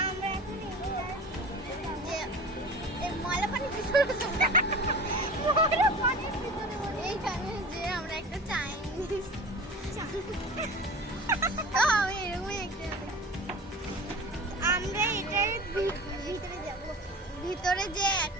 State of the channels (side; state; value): both; normal; correlation 0.37